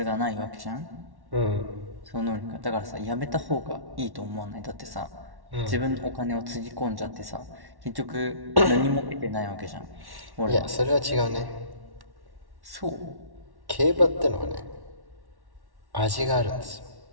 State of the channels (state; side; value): late; left; 1.1 ms